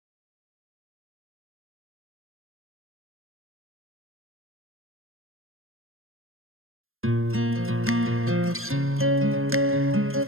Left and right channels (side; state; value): left; late; 0.61 ms